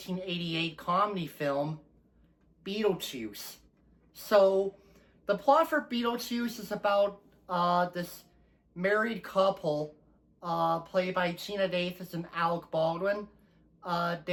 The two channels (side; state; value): both; identical; correlation 1.00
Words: comedy film, Beetlejuice. So, the plot for Beetlejuice is about this married couple, played by Gina Davis and Alec Baldwin.